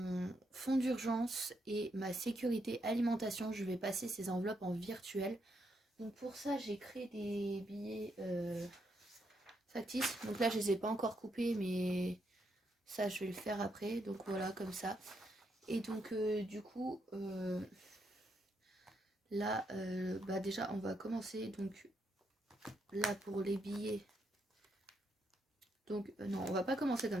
fonds d'urgence et ma sécurité alimentation, je vais passer ces enveloppes en virtuel. Donc pour ça, j'ai créé des billets factices. Donc là, je les ai pas encore coupés, mais ça, je vais le faire après. Donc voilà, comme ça. Et donc du coup, là, bah déjà, on va commencer. Donc là, pour les billets. Donc non, on va pas commencer comme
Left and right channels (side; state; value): both; normal; correlation 0.78